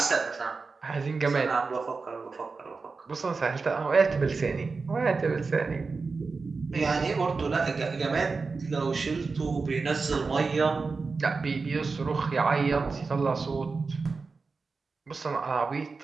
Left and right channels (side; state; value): left; quieter; 4.4 dB